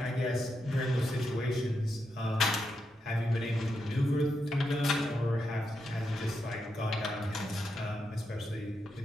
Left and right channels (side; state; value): both; normal; correlation 0.84